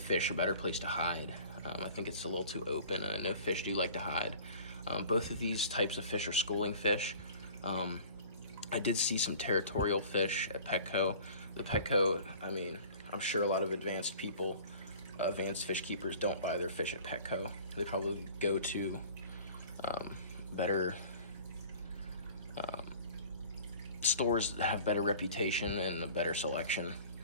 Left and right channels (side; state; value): both; inverted; correlation -0.45